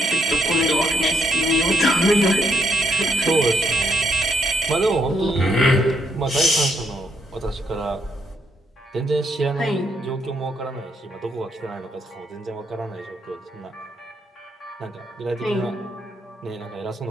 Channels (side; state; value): both; normal; correlation 0.74